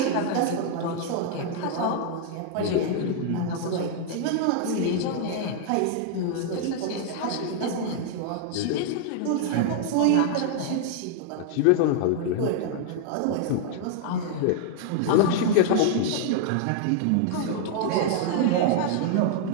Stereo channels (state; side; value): different; both; correlation 0.00